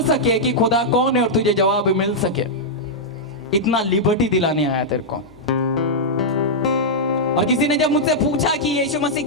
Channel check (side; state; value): both; normal; correlation -0.07